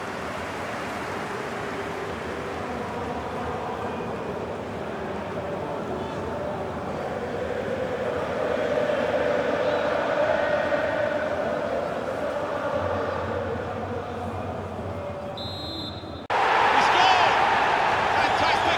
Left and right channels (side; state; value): both; identical; correlation 1.00